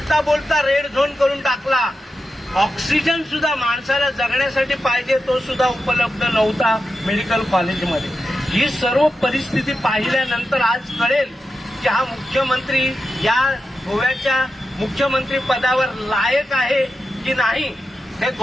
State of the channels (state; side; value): normal; both; correlation 0.90